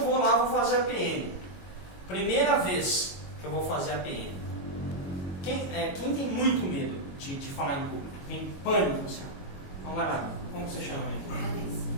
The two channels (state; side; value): late; right; 22 ms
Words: vou lá, vou fazer a PN. Primeira vez que eu vou fazer a PN. Quem tem muito medo de falar em público? Tem pânico? Assim? Vamos lá, como você chama?